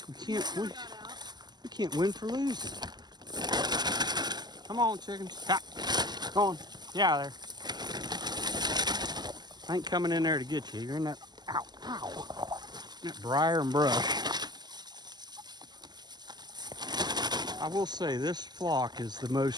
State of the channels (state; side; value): late; left; 0.21 ms